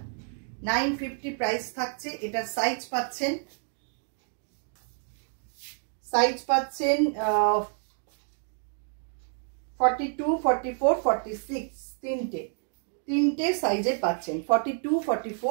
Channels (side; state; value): left; silent; 56 dB below the other